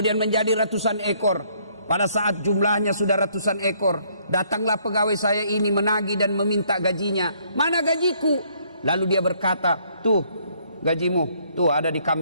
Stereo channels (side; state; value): both; inverted; correlation -0.66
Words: menjadi ratusan ekor. Pada saat jumlahnya sudah ratusan ekor, datanglah pegawai saya ini menagih dan meminta gajinya. Mana gajiku? Lalu dia berkata, tuh gajimu, tuh ada di